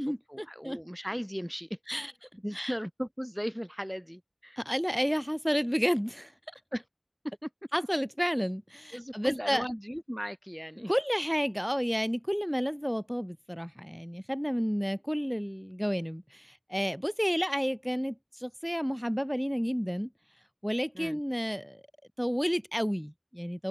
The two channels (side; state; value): both; identical; correlation 1.00